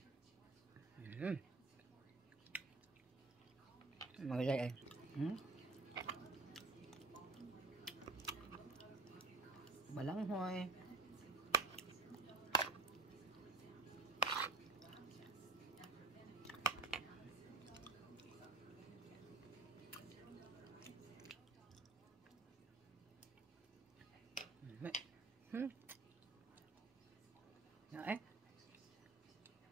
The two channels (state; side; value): quieter; left; 3.8 dB